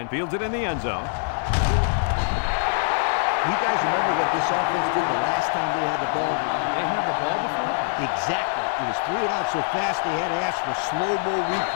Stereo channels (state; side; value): silent; right; 63 dB below the other